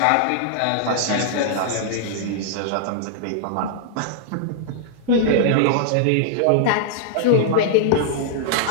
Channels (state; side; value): different; both; correlation -0.01